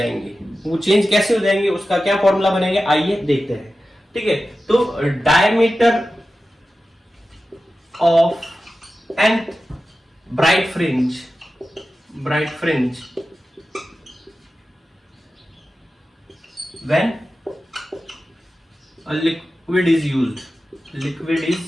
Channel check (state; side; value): normal; both; correlation 0.93